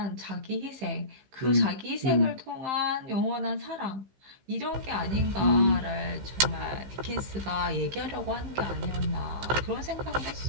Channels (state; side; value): late; left; 15 ms